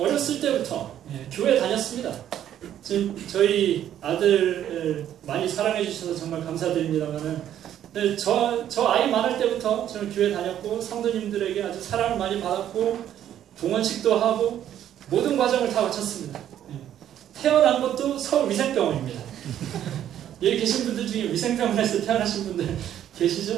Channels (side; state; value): left; quieter; 10.9 dB